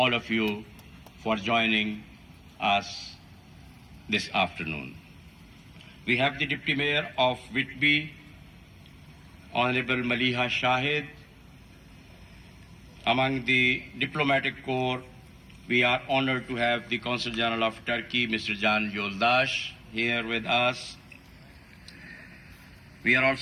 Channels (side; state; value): both; identical; correlation 1.00